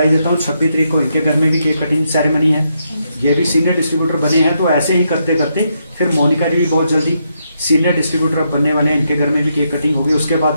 देता हूँ। 26 तारीख को इनके घर में भी केक कटिंग सेरेमनी है, ये भी सीनियर डिस्ट्रीब्यूटर बने हैं। तो ऐसे ही करते करते फिर मोनिका जी भी बहुत जल्दी सीनियर डिस्ट्रीब्यूटर बनने वाले हैं, इनके घर में भी केक कटिंग होगी। उसके बाद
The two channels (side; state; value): both; inverted; correlation -0.80